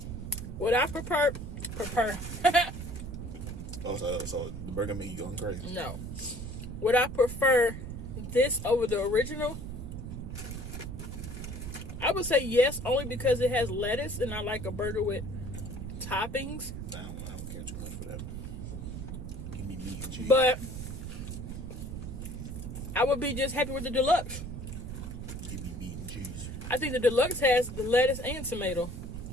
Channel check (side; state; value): right; noise; rumble, 7 dB below the sound